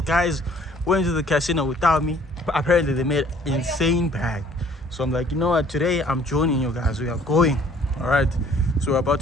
guys went to the casino without me. Apparently, they made insane bag. So I'm like, you know what? Today, I'm joining you guys. We are going. All right. So we're about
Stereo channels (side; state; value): both; normal; correlation 0.57